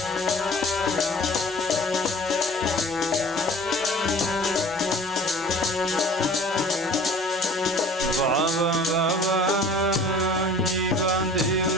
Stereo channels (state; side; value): normal; both; correlation 0.46